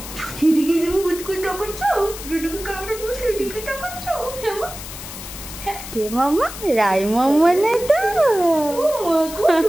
সেদিকে তুমি বুঝকুই টাকাচ্ছ, যেদিকে ক্যামেরা পুরো সেদিকে টাকাচ্ছ। কে মাম্মা? রাই মাম্মা না তো?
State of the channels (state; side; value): noise; left; hiss, 11 dB below the sound